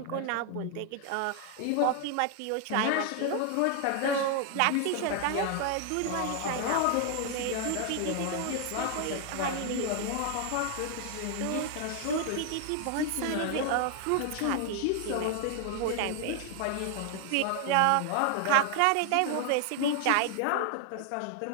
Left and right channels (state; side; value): different; both; correlation 0.00